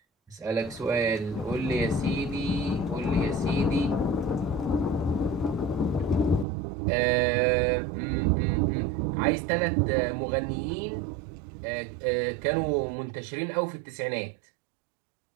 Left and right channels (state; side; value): drops out; left; at 6.5 s